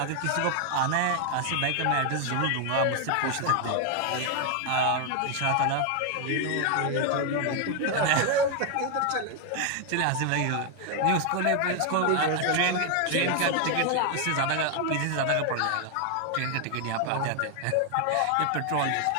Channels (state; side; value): different; both; correlation 0.00